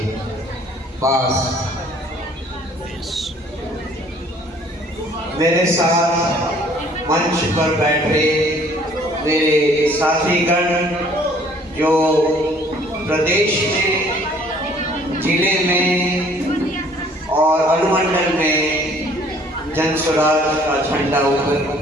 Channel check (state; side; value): normal; both; correlation 0.57